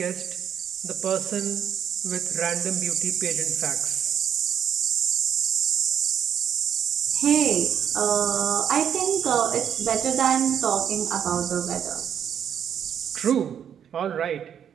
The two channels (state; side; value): quieter; left; 8.7 dB